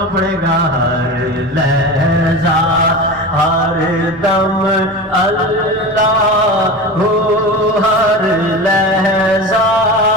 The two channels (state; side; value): normal; both; correlation 0.29